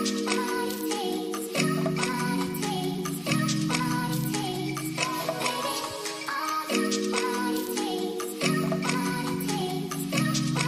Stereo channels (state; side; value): identical; both; correlation 1.00